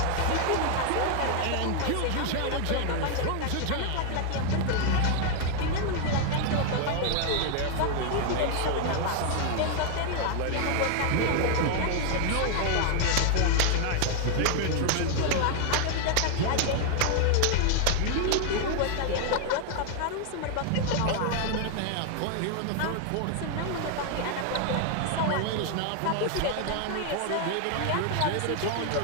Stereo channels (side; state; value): both; different; correlation 0.00